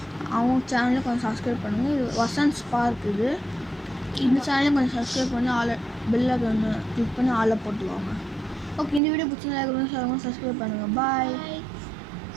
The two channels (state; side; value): drops out; left; at 9.0 s